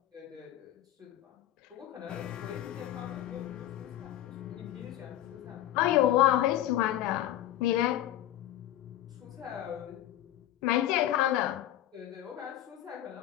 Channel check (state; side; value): quieter; right; 13.0 dB